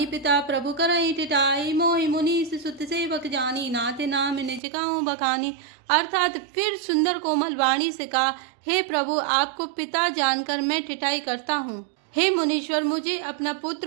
पिता प्रभु करई टिटाई, मोहि मुनीस सुत सेवक जानी, नाते नाम निज गाऊं बखानी। अर्थात फिर सुंदर कोमल वाणी से कहा, हे प्रभु आपको पिता जानकर मैं टिटाई करता हूँ। हे मुनीश्वर मुझे अपना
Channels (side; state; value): left; drops out; at 4.6 s